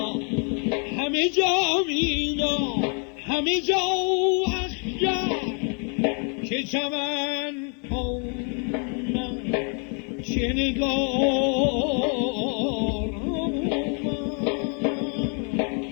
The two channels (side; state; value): right; quieter; 38.9 dB